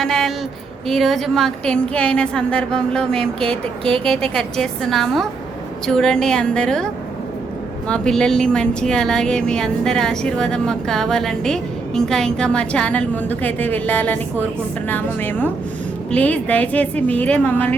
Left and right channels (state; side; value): quieter; left; 4.3 dB